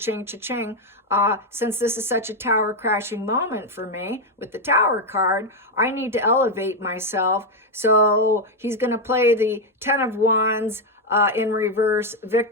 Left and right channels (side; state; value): both; normal; correlation 0.05